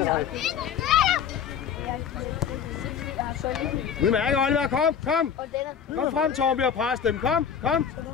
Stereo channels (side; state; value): right; quieter; 7.7 dB